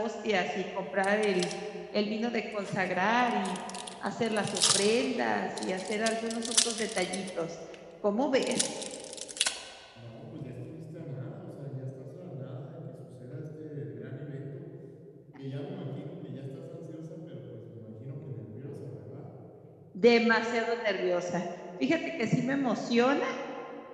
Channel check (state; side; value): identical; both; correlation 1.00